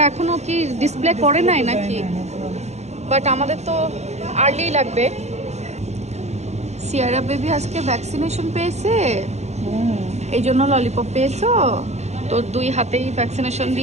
এখনো কি ডিসপ্লে করে নাই নাকি? বাট আমাদের তো আর্লি লাগবে। সিয়ারা বেবি আজকে ভ্যাকসিনেশন পেয়েছে, এই জন্য ললিপপ পেয়েছো। তো 2 হাতেই ভ্যাকসিনেশন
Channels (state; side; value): late; left; 0.32 ms